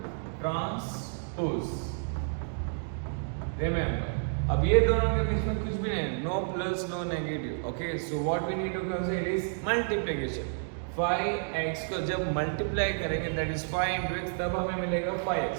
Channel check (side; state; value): left; silent; digital silence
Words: Transpose. Remember. अब ये दोनों के बीच में कुछ भी नहीं, no plus no negative. Okay, so what we need to consider is multiplication. 5x को जब मल्टीप्लाई करेंगे दैट इज 5 into x, तब हमें मिलेगा 5x.